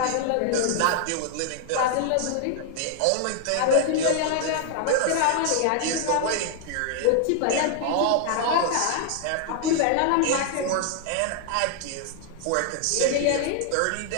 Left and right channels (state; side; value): different; both; correlation 0.00